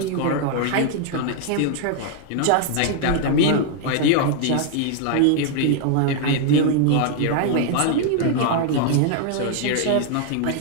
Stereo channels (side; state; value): both; different; correlation 0.00